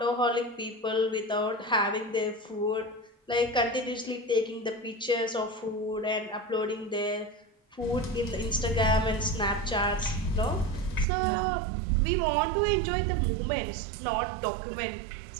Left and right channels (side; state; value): left; drops out; at 11.1 s